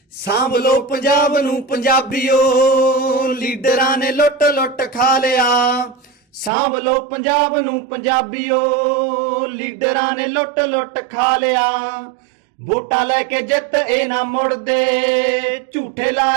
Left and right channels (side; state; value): left; drops out; at 6.5 s